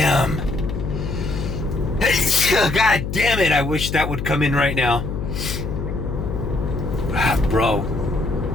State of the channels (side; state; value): left; noise; hum, 4 dB below the sound